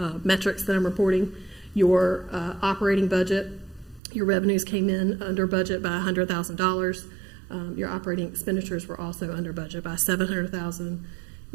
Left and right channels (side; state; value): left; drops out; at 4.0 s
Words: metrics that I'm reporting. Your operating budget, your revenues came in under budget by $100,000. Your operating expenditures were also under budget by $700,000.